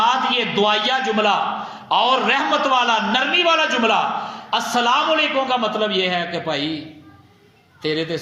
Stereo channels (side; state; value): both; identical; correlation 1.00